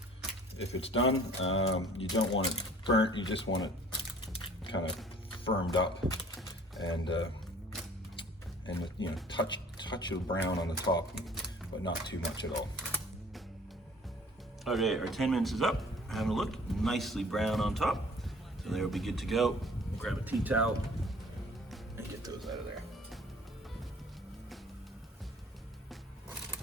done. You don't want it burnt, you just want it kind of firmed up. And and you know, touch of brown on the top, but not too much at all. Okay, our 10 minutes is up. Having a look, nicely brown on top. So they'll be good to go. Grab a tea towel and get those out of there.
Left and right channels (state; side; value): normal; both; correlation 0.51